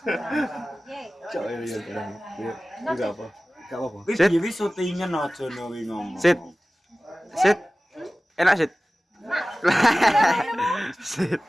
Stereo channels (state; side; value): normal; both; correlation 0.97